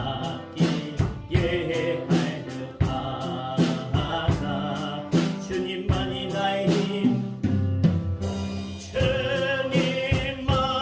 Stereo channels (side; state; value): both; identical; correlation 1.00